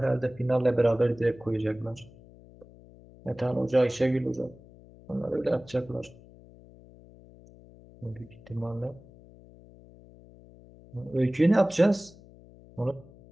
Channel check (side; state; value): left; noise; hum, 22 dB below the sound